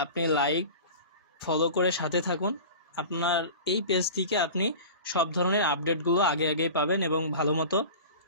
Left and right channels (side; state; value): both; inverted; correlation -0.36